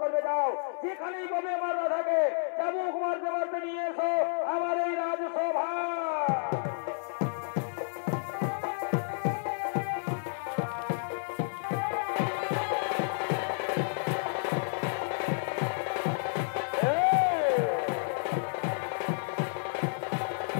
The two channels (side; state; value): right; silent; 57 dB below the other